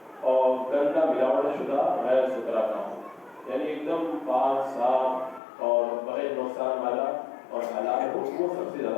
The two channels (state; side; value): drops out; right; at 5.4 s